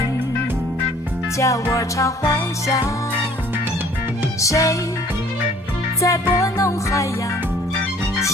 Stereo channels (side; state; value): both; normal; correlation 0.56